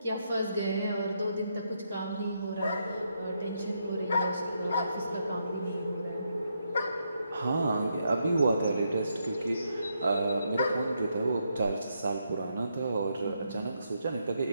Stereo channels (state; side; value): inverted; both; correlation -0.79